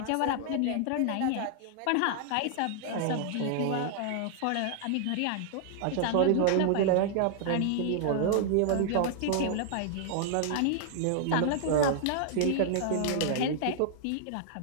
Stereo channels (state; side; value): different; both; correlation -0.01